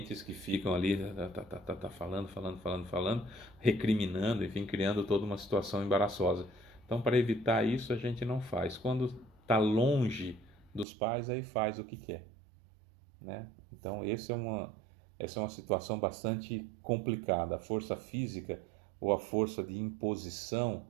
que ficam ali falando, falando, falando, falando, recriminando, enfim, criando toda uma situação embaraçosa. Então, para evitar isso, a gente não faz. Quando está longe dos pais, aí faz o que quer, né? Então, essa é uma situação bastante complicada. A força física ou a força de imposição,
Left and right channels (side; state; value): left; drops out; at 10.9 s